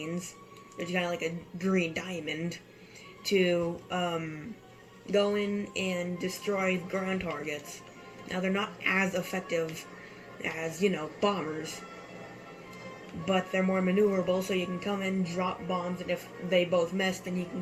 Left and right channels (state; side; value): identical; both; correlation 1.00